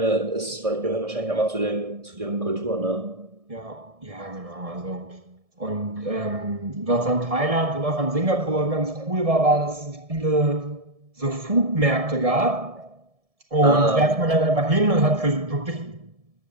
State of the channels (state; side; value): late; left; 1.7 ms